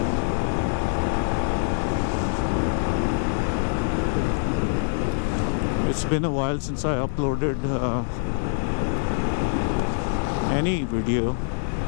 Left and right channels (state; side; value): silent; right; 62 dB below the other